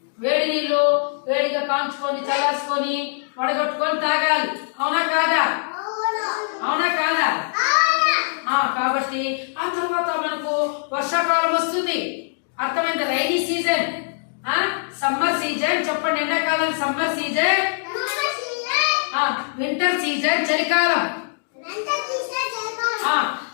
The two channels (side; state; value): right; silent; digital silence